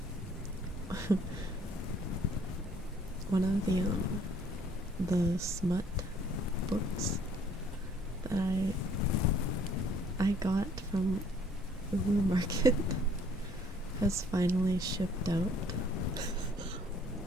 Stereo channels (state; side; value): normal; both; correlation 0.59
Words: one of the smut books that I got from Uwu Market has finally shipped out.